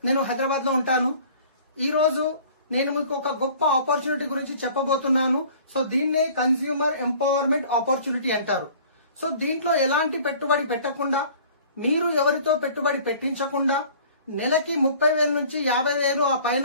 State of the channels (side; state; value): both; inverted; correlation -0.49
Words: నేను హైదరాబాద్ లో ఉంటాను. ఈ రోజు నేను మీకు ఒక గొప్ప ఆపర్చునిటీ గురించి చెప్పబోతున్నాను. సో దీన్నే కన్స్యూమర్ ఎంపవర్మెంట్ ఆపర్చునిటీ అంటారు. సో దీంట్లో ఎలాంటి పెట్టుబడి పెట్టకుండా, మీరు ఎవరితో పెట్టుబడి పెట్టించకుండా నెలకి 30,000 నుంచి 50,000 ఆ